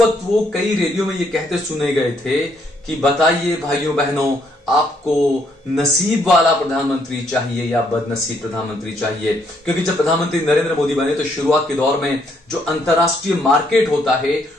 वक्त वो कई रैलियों में ये कहते सुने गए थे कि बताइए भाइयों बहनों, आपको नसीब वाला प्रधानमंत्री चाहिए या बदनसीब प्रधानमंत्री चाहिए? क्योंकि जब प्रधानमंत्री नरेंद्र मोदी बने तो शुरुआत के दौर में जो अंतरराष्ट्रीय मार्केट होता है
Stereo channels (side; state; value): both; normal; correlation 0.71